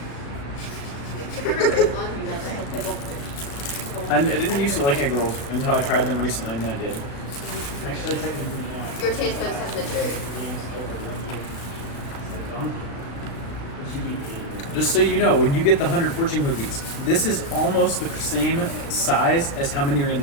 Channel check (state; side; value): late; right; 36 ms